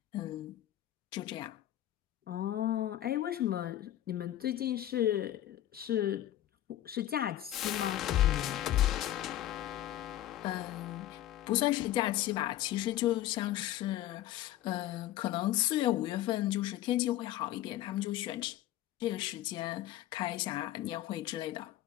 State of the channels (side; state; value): right; quieter; 13.4 dB